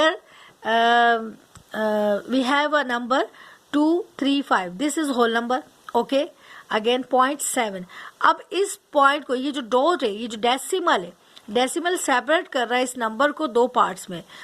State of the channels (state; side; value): identical; both; correlation 1.00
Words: we have a number 235, this is whole number, okay, again 0.7। अब इस पॉइंट को, ये जो डॉट है, ये जो डेसिमल है, डेसिमल सेपरेट कर रहा है इस नंबर को दो पार्ट्स में।